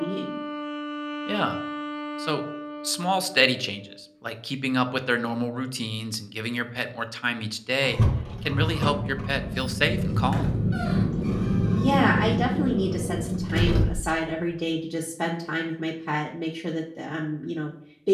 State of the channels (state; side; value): identical; both; correlation 1.00